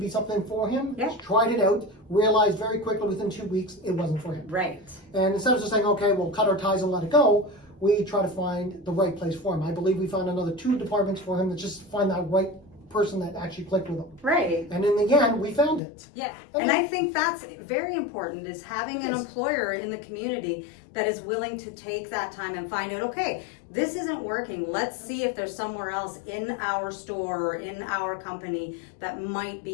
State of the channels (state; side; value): drops out; right; at 15.8 s